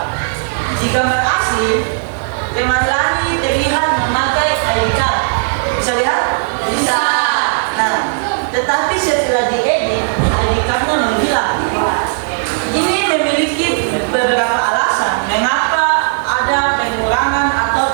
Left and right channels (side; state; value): left; silent; digital silence